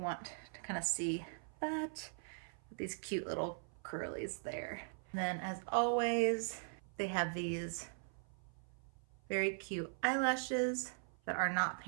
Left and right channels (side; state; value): left; silent; 51 dB below the other